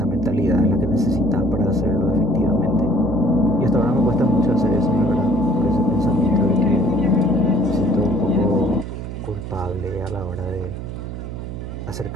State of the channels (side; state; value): right; noise; hum, 8 dB below the sound